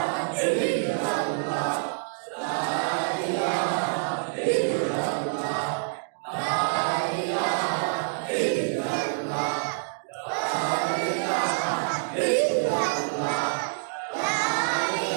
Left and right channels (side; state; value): left; silent; digital silence